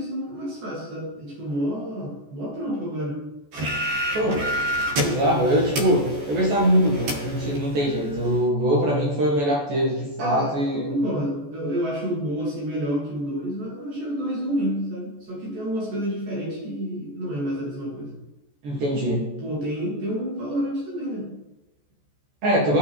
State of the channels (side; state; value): left; late; 14 ms